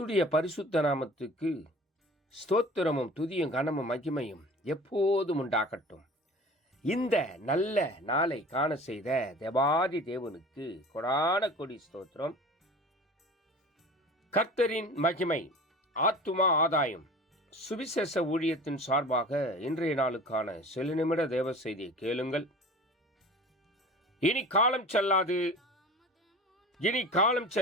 பரிசுத்த நாமத்துக்கு ஸ்தோத்திரமும் துதியும் கனமும் மகிமையும் எப்போதும் உண்டாகட்டும். இந்த நல்ல நாளை காண செய்த தேவாதி தேவனுக்கு கொடான கொடி ஸ்தோத்திரம். கர்த்தரின் மகிமை ஆத்துமா ஆதாயம் சுவிசேஷ ஊழியத்தின் சார்பாக இன்றைய நாளுக்கான சில நிமிட தேவ செய்தியை கேளுங்கள். இனி காலம் செல்லாது, இனி காலம்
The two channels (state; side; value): normal; both; correlation 0.40